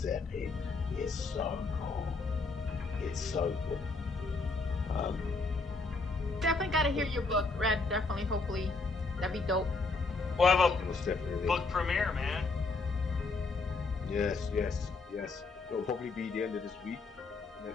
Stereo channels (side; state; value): right; quieter; 3.8 dB